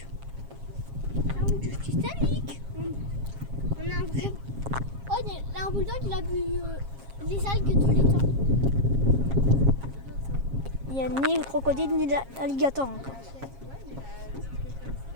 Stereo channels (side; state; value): left; late; 7.4 ms